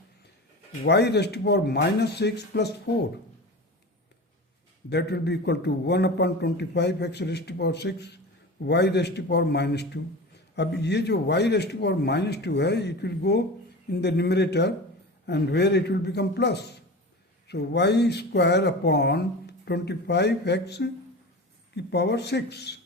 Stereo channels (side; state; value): both; normal; correlation 0.31